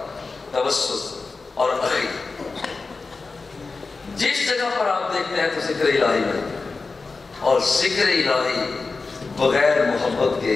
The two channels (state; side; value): quieter; right; 4.1 dB